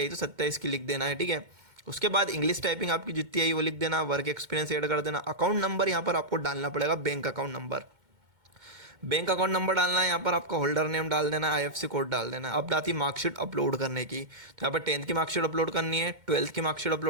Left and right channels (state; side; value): late; left; 2.1 ms